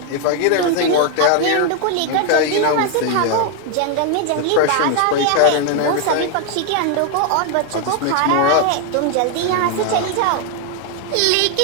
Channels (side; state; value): both; different; correlation 0.01